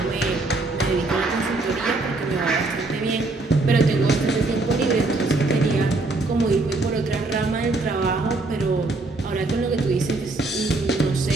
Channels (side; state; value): left; quieter; 3.2 dB